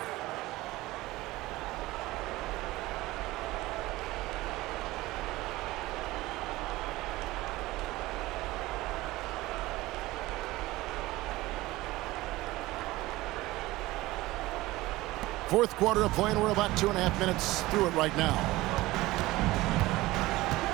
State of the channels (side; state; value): left; quieter; 18.7 dB